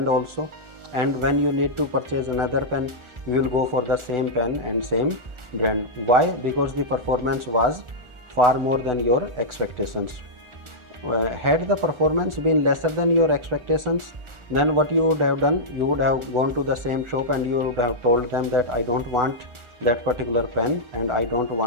also, and when you need to purchase another pen, you will go for the same pen and same brand. Why? Because the performance was far more than your expectations. Had the performance been lesser than your expectations, then what you would have done, you would have gone to the same shop and you would have told them that I don't want that particular pen and I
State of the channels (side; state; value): left; late; 1.4 ms